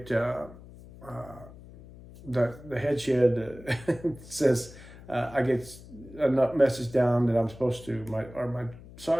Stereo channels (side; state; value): left; noise; hum, 18 dB below the sound